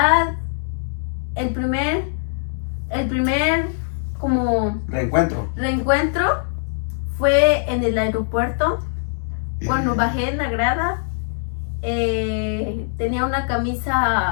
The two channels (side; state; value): right; silent; digital silence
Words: el primer como reencuentro fue en el aeropuerto, cuando bajé en la grada. Tenía una